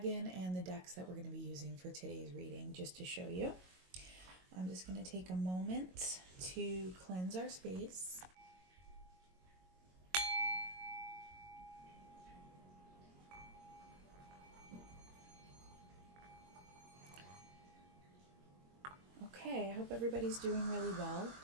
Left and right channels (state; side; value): late; left; 22 ms